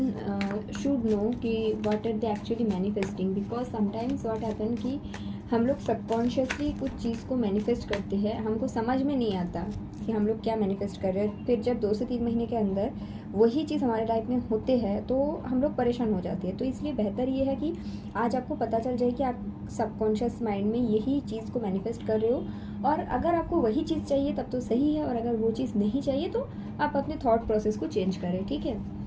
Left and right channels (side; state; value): both; identical; correlation 1.00